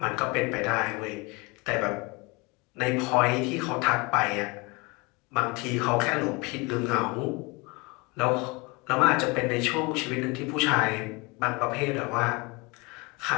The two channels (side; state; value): right; quieter; 26.9 dB